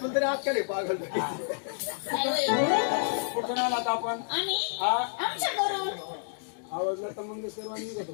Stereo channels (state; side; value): silent; right; digital silence